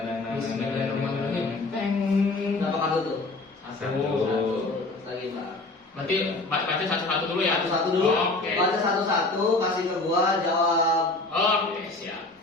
Bismillahirrahmanirrahim. Peng. Berapa kartu tuh? Satu. Terus lagi Bang. Berarti baca satu-satu dulu ya. Satu-satu dulu. Oke. Baca satu-satu, kasih ke gua jawab. Oke, siap.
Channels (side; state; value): right; quieter; 3.1 dB